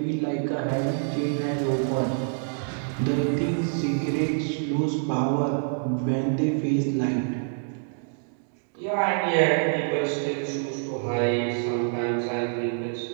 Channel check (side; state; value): left; silent; digital silence